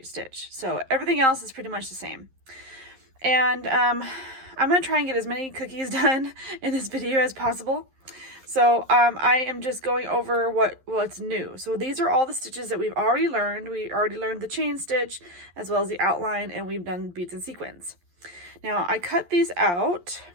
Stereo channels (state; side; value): late; left; 11 ms